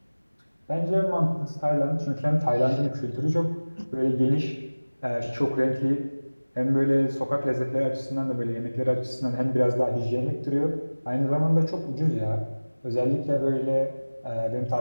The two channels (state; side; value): inverted; both; correlation -1.00